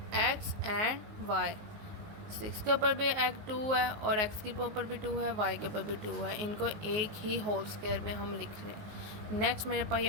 x एंड y, 6 के ऊपर भी एक 2 है और x के ऊपर भी 2 है, y के ऊपर भी 2 है, इनको एक ही होल स्क्वायर में हम लिख रहे हैं। नेक्स्ट मेरे पास ये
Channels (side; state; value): left; late; 19 ms